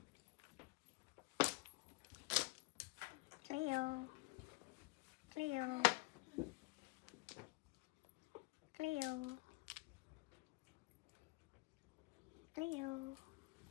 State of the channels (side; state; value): right; quieter; 26.2 dB